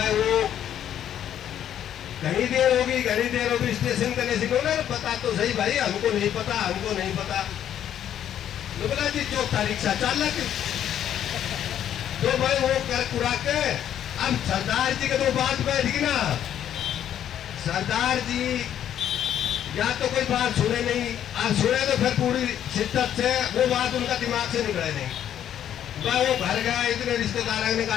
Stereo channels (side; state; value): right; quieter; 10.4 dB